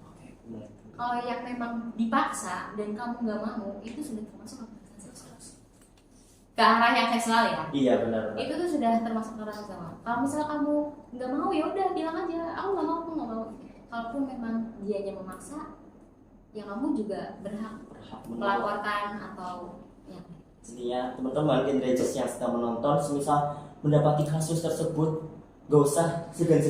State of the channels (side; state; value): both; identical; correlation 1.00